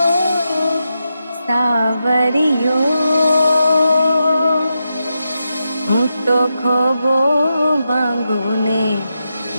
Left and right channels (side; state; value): both; inverted; correlation -0.87